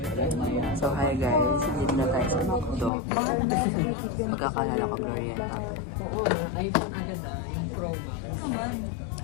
So hi guys, dito na tayo sa McDo. Pagkakalala ko Glorieta to. Yung promo.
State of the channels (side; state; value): right; drops out; at 2.9 s